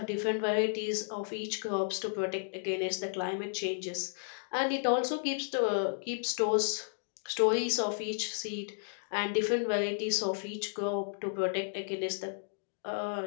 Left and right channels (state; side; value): silent; right; digital silence